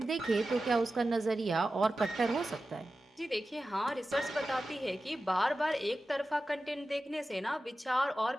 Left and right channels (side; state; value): both; normal; correlation 0.94